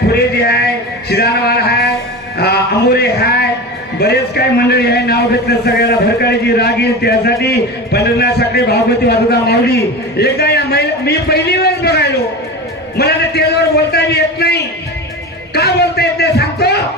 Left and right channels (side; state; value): both; normal; correlation 0.28